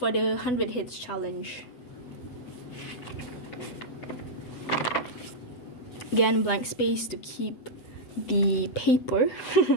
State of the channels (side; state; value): right; late; 8.1 ms